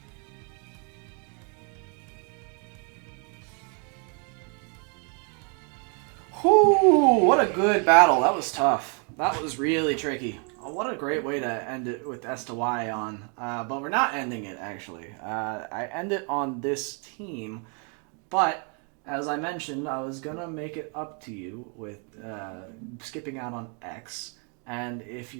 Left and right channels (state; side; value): quieter; left; 38.3 dB